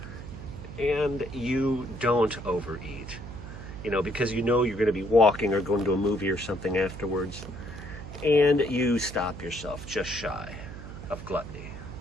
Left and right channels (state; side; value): noise; right; hum, 11 dB below the sound